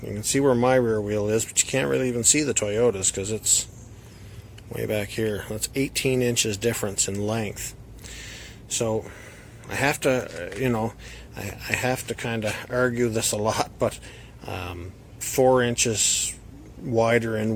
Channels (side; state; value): both; identical; correlation 1.00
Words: you can see where my rear wheel is, but you can't really even see the Toyota's because it's way back here. That's 18 inches difference in length. So I have to, I have to kind of argue this a lot, but 4 inches wider